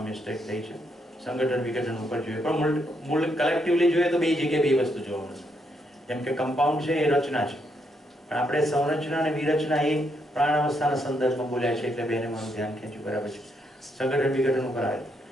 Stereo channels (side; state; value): both; normal; correlation 0.77